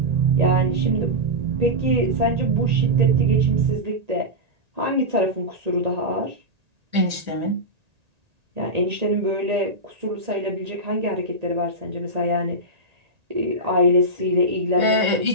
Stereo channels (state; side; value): late; left; 1.8 ms